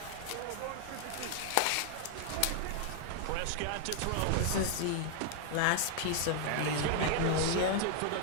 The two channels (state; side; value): different; both; correlation 0.00